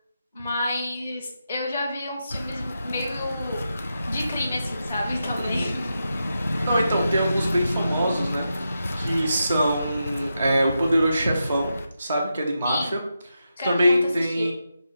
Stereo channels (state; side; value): inverted; both; correlation -0.87